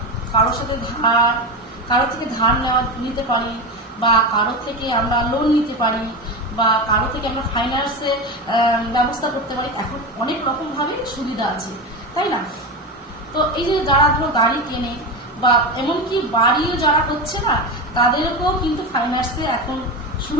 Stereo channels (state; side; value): normal; both; correlation 0.20